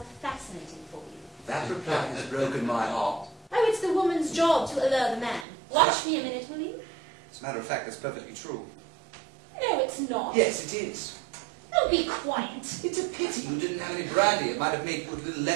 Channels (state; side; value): drops out; left; at 5.5 s